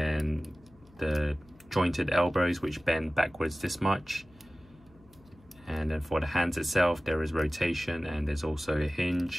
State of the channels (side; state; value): left; noise; hum, 27 dB below the sound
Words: the jointed elbows which bend backwards this much. And then for the hands itself, there is rotation, and there's also a